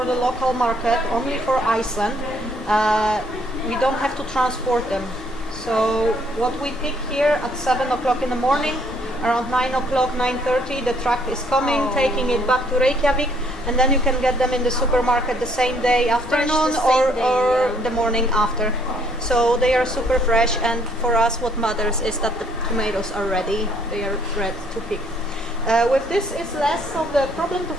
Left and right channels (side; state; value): both; normal; correlation 0.65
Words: the local market, only for Iceland, we don't have to transport them. So what we pick here at 7 o'clock in the morning, around 9 o'clock, 9:30, the truck is coming, taking it back to Reykjavik, and then you can get them in the supermarket the same day afternoon the same day, or the morning after. So they are super fresh, and for us what matters is that the tomatoes are ready, they are ready to pick. With this is less of the problem to